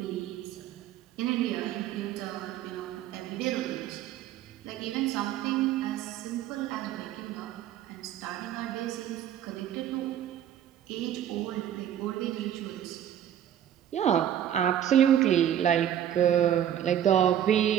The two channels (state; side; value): quieter; left; 10.6 dB